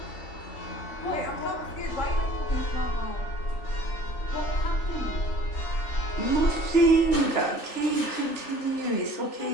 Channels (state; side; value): late; right; 3.4 ms